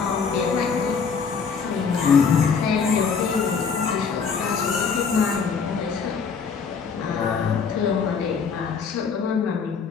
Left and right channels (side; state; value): right; quieter; 5.8 dB